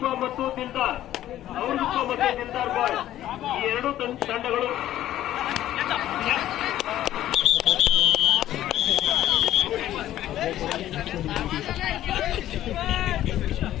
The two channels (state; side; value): quieter; right; 13.0 dB